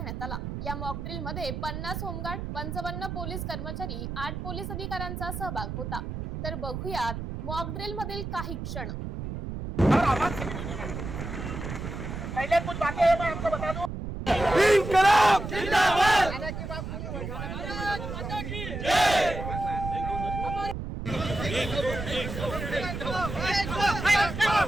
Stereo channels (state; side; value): noise; right; rumble, 6 dB below the sound